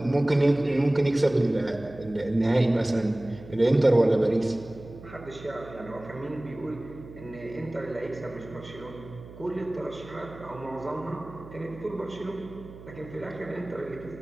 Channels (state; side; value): noise; right; hum, 17 dB below the sound